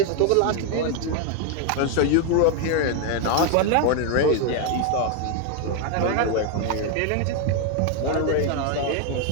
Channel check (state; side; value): different; both; correlation 0.01